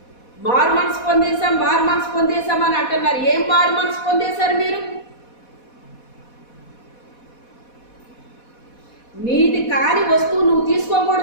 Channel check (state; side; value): late; right; 4.1 ms